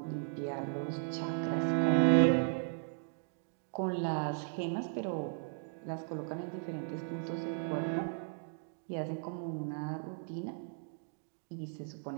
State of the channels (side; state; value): left; silent; digital silence